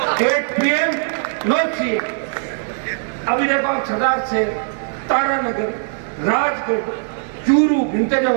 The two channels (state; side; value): silent; left; 66 dB below the other